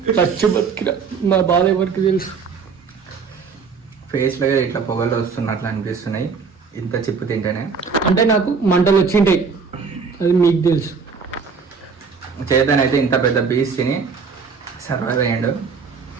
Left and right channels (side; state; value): left; quieter; 5.3 dB